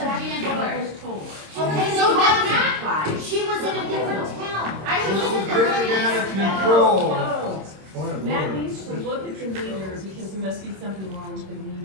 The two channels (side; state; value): left; late; 26 ms